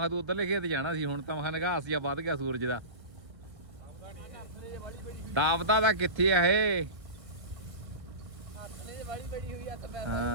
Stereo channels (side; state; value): left; late; 1.4 ms